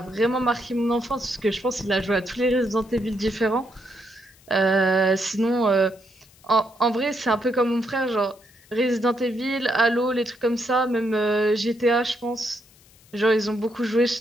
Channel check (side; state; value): left; noise; hiss, 28 dB below the sound